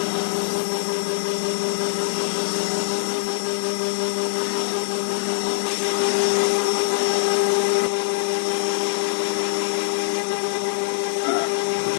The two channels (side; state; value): right; silent; 63 dB below the other